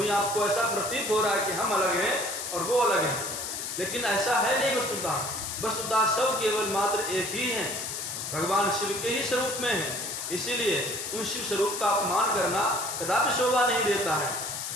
आपको ऐसा प्रतीत हो रहा है कि हम अलग हैं और वो अलग हैं, लेकिन ऐसा है नहीं। वस्तुतः सब केवल मात्र एक ही हैं, भगवान शिव के ही स्वरूप में हैं। इसीलिए उन शिव स्वरूप का अपमान करना कदापि शोभा नहीं देता है।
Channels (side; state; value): left; noise; hiss, 5 dB below the sound